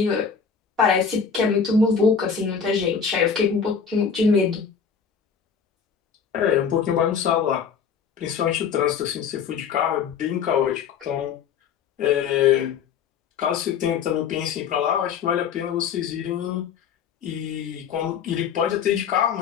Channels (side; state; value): right; quieter; 6.7 dB